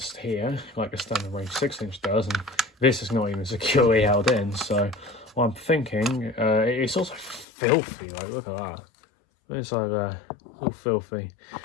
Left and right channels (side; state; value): right; drops out; at 7.5 s